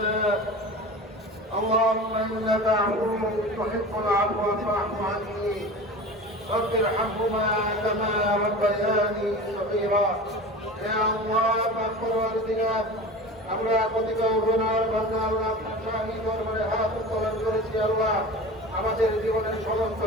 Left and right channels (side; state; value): both; normal; correlation 0.34